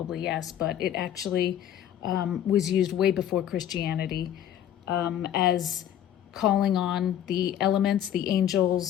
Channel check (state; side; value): quieter; right; 10.6 dB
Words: yes, but it actually was used way before Christianity as calling on the elements, the